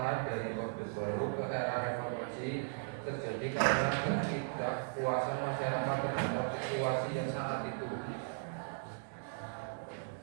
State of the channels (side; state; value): left; silent; digital silence